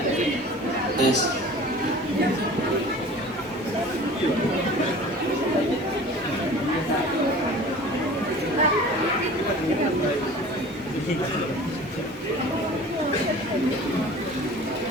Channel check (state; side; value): normal; both; correlation 0.42